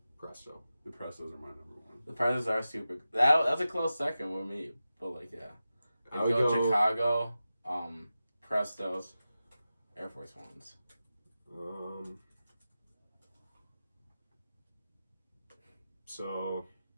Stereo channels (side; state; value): both; inverted; correlation -0.93